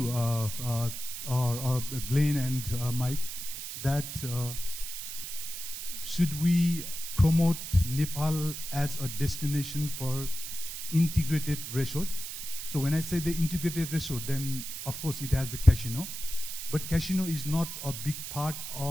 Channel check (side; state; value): right; noise; hiss, 7 dB below the sound